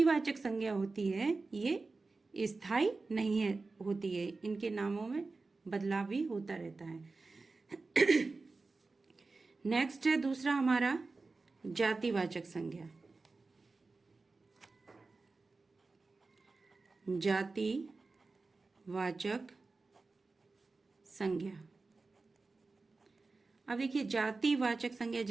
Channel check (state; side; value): quieter; left; 3.8 dB